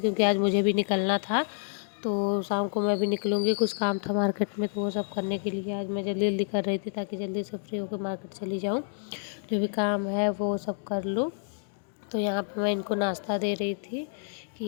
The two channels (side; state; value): right; silent; digital silence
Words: क्योंकि आज मुझे भी निकलना था। तो शाम को मैं भी निकलूँगी, कुछ काम था मार्केट में, तो वो सब करने के लिए आज मैं जल्दी जल्दी कर रही थी, ताकि जल्दी से फ्री होकर मार्केट चली जाऊँ, जो भी काम है वो सब कर लूँ। तो यहाँ पे मैं इनको नाश्ता दे रही थी कि